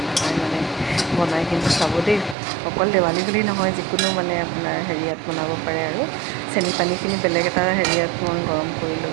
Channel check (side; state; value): left; drops out; at 2.4 s